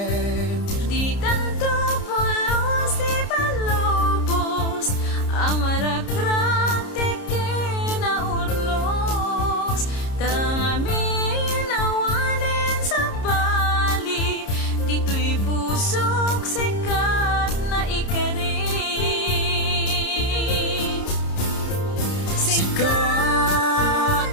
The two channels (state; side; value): late; right; 30 ms